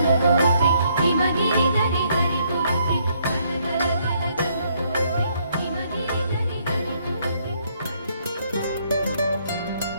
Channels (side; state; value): both; inverted; correlation -0.70